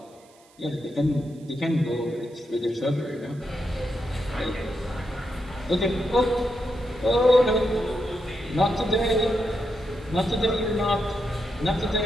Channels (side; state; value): right; noise; hiss, 29 dB below the sound